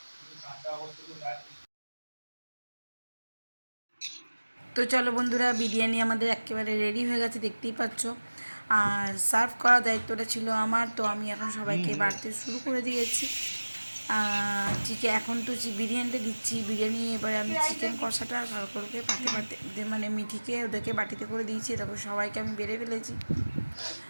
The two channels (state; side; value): inverted; both; correlation -1.00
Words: তো চলো বন্ধুরা, বিরিয়ানি আমাদের একেবারে রেডি হয়ে গেছে, দেখতেই পাচ্ছ। আর সার্ভ করার দায়িত্বটা ছিল আমার, তো আমি এখন সবাইকে বাড়তে শুরু করে দিয়েছি। চিকেন এখন তো বিরিয়ানিটা দিচ্ছি। বিরিয়ানি এবারে আমি চিকেন কষাটা সরকারকে পাতে পাতে মানে মিঠিকে ওদেরকে বাটিতে করে দিয়েছি। তারপর সবাইকে আমি বেড়ে ফেলেছি।